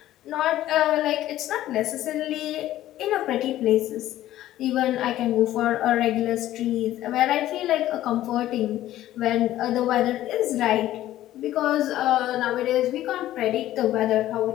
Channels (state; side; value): quieter; right; 13.9 dB